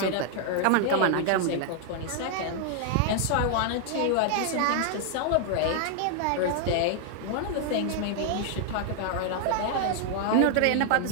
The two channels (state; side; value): different; both; correlation 0.00